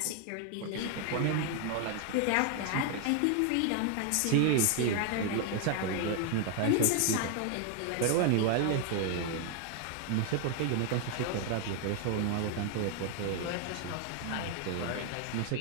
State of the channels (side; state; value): both; different; correlation 0.00